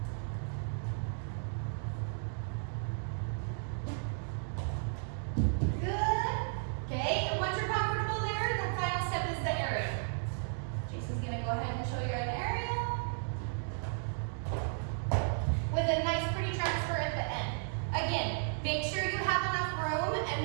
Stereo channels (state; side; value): silent; left; digital silence